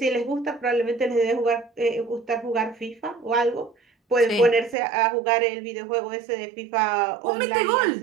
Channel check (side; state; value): left; drops out; at 4.8 s